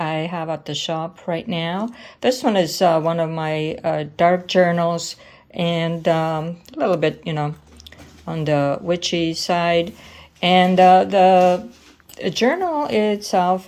have at the shop right now. This one is one of my dark journals and a little bit, on the witchy side. And the journal itself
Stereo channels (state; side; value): identical; both; correlation 1.00